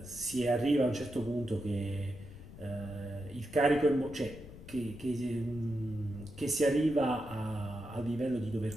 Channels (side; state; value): left; noise; rumble, 15 dB below the sound